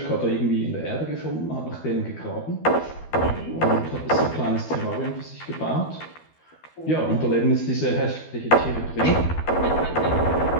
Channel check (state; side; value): late; right; 12 ms